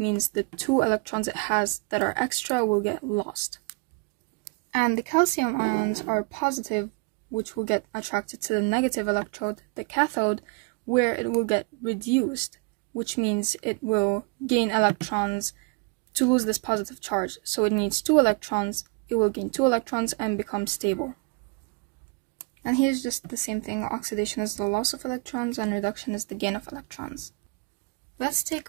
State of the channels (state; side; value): quieter; left; 31.6 dB